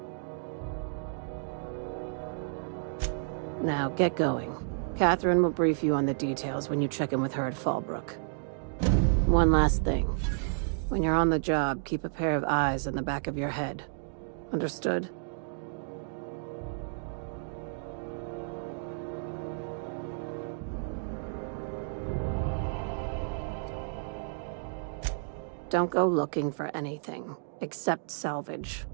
Now, get going. Catherine will brief you on the details when you check in with her at Fallbrook. One last thing. When you're on the job, keep a pair of eyes in the back of your head. Understood? Don't go looking for anything, except salvage.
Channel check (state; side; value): silent; left; digital silence